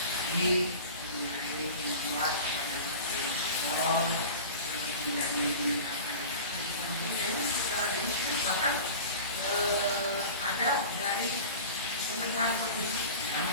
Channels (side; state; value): both; inverted; correlation -0.36